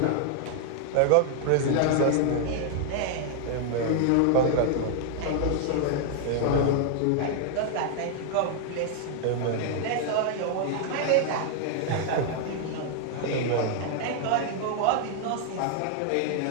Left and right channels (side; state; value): both; different; correlation 0.00